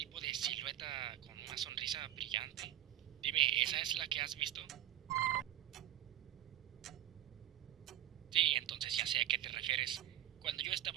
de silueta con una sonrisa brillante. Dime, ¿esa es la que has visto? Sí, entonces ya sé a qué te refieres. Cuando yo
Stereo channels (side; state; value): left; quieter; 12.6 dB